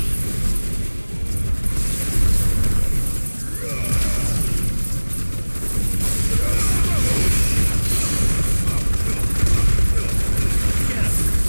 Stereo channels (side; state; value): both; inverted; correlation -1.00